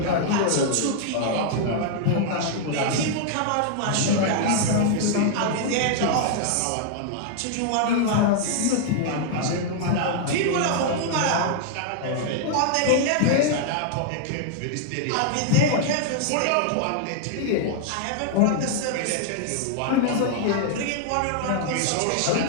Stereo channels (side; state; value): both; different; correlation 0.00